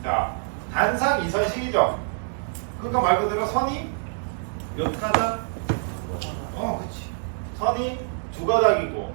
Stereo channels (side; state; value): left; silent; 61 dB below the other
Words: 자, 단상 2선식이죠. 그러니까 말 그대로 선이 몇 가닥? 그치. 선이 2가닥이고